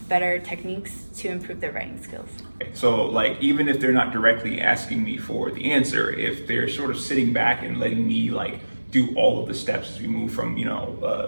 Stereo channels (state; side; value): inverted; both; correlation -1.00